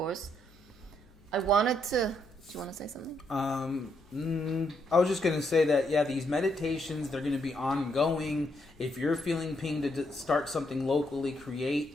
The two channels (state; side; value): noise; left; hum, 28 dB below the sound